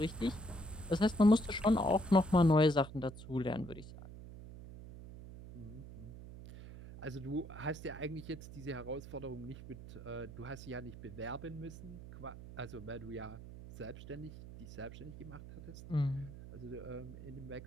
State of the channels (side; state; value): right; noise; hum, 13 dB below the sound